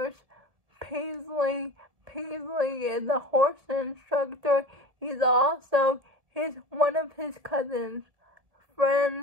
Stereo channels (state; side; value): late; left; 1.7 ms